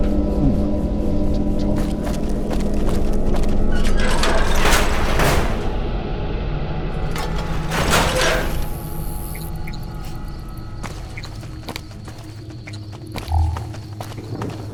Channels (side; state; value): both; identical; correlation 1.00